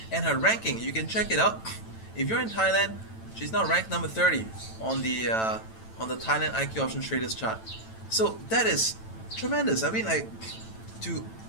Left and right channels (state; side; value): late; right; 9.0 ms